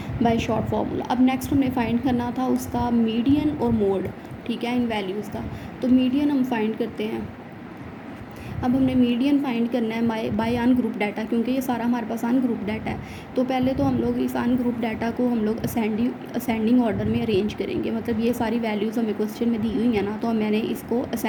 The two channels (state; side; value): identical; both; correlation 1.00